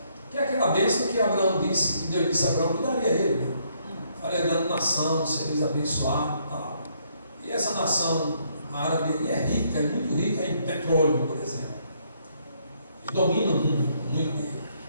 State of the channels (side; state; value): both; inverted; correlation -0.71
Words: que é aquela bênção que Abraão disse, que Deus disse a Abraão que daria a ele, né? Faria grande nação, seres abençoados e tal. E essa nação árabe aí é rica, é muito rica em petróleo, por exemplo. Eles dominam o mundo, muito dinheiro.